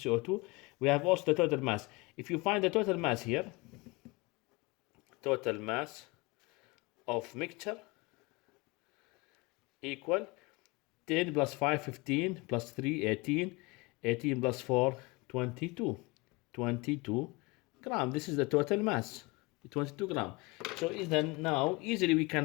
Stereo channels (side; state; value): right; quieter; 25.2 dB